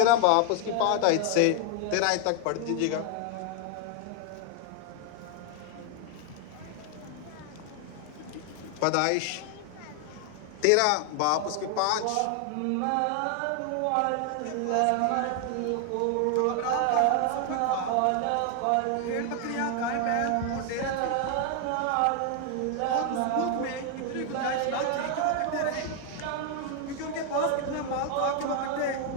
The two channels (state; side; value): different; both; correlation 0.00